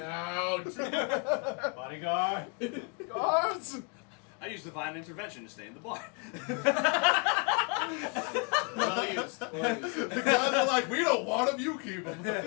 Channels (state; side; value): quieter; right; 34.5 dB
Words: Bodyguard. Guards! I used divine intervention to stay in the bar. Well used. Well used. The guys are like, we don't want him, you keep him.